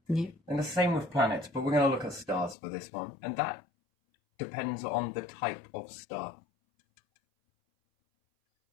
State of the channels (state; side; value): drops out; right; at 2.6 s